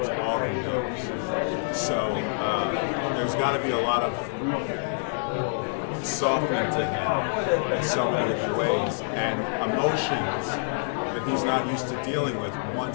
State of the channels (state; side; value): silent; right; 56 dB below the other